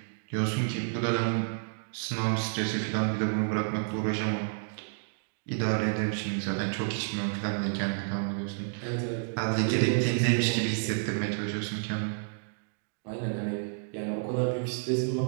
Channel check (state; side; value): silent; left; digital silence